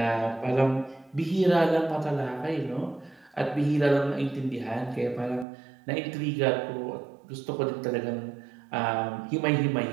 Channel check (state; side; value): drops out; left; at 5.5 s